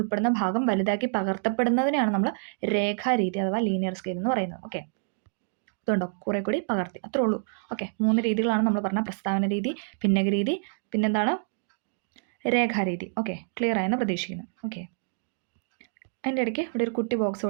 ഭാഗം വലുതാക്കി പകർത്തപ്പെടുന്നതിനെയാണ് നമ്മൾ രേഖാരീതി അഥവാ ലീനിയർ സ്കെയിൽ എന്ന് പറയുന്നത്. ഓക്കെ, ഇതുണ്ടോ കുറെ കൂടി പകർത്തി, അത്രേ ഉള്ളൂ. ഓക്കെ, 3 രീതികളാണ് നമ്മൾ പറഞ്ഞ പ്രസ്താവന രീതി, ഭിന്നക രീതി, പിന്നെന്താണ് രേഖാരീതി. ഓക്കെ, ക്ലിയർ ആയെന്ന് പ്രതീക്ഷിക്കുന്നു. ഓക്കെ, അതിൻ്റെ ഇടയ്ക്ക് ഇവിടെ ഒരു കുട്ടി ബോക്സ്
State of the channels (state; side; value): silent; left; digital silence